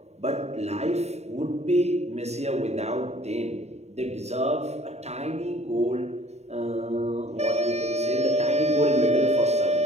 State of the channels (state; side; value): late; left; 0.32 ms